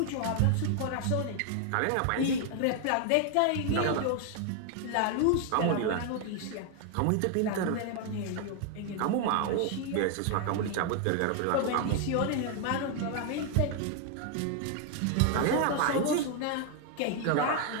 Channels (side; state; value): both; different; correlation 0.00